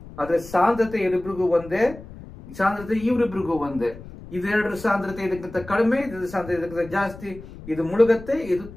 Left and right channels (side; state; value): left; noise; rumble, 16 dB below the sound